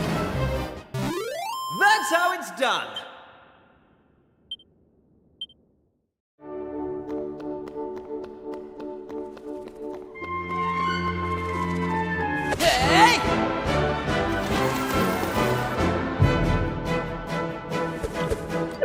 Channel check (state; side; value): identical; both; correlation 1.00